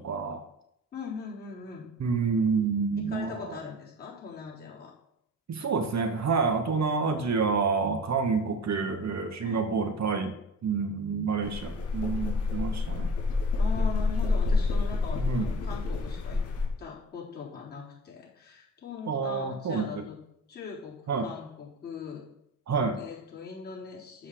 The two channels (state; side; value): normal; both; correlation 0.37